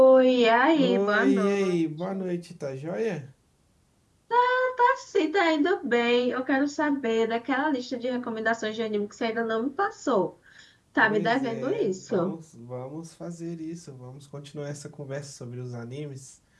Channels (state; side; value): identical; both; correlation 1.00